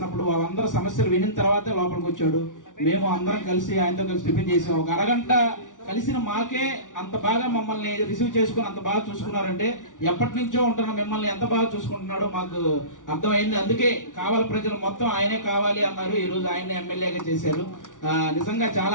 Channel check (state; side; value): late; right; 0.87 ms